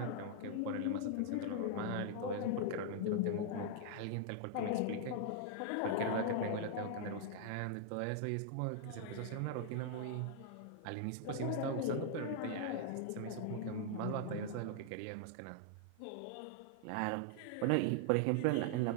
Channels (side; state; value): both; different; correlation -0.01